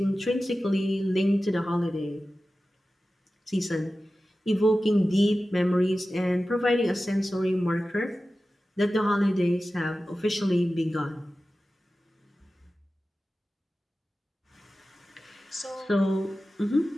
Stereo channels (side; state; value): both; normal; correlation 0.95